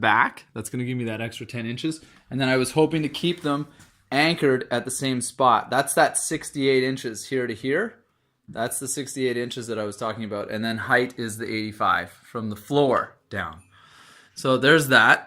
That's gonna give me that extra 10 inches. And then I was hoping to keep them anchored at the same spot. That's that 68 inches here to here. That's the 68 inches that I was talking about. And then height is the 85 from the floor down. So there's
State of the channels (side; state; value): both; identical; correlation 1.00